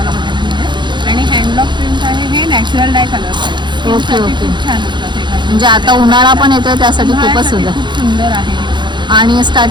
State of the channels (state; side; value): late; left; 0.22 ms